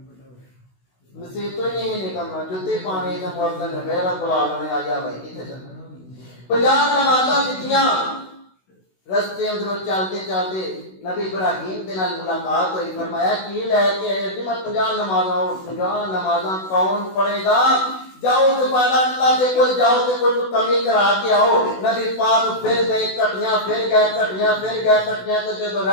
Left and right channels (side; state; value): right; late; 16 ms